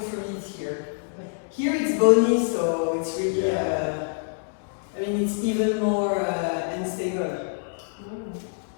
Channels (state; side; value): silent; right; digital silence